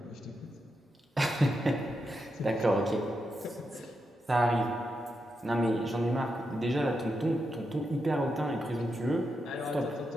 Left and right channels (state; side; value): normal; both; correlation 0.85